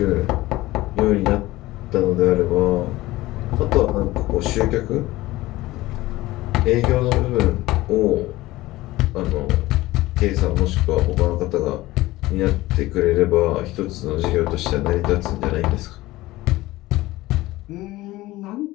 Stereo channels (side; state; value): right; quieter; 18.2 dB